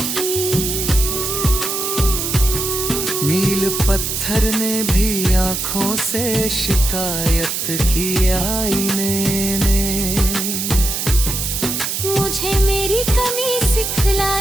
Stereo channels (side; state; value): right; noise; hiss, 2 dB below the sound